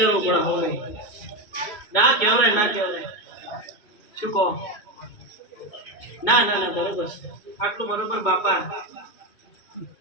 પડે હવે ના કહેવાય શું કહો ના ના ના બરોબર આટલું બરોબર બાપા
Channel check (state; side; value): late; right; 2.3 ms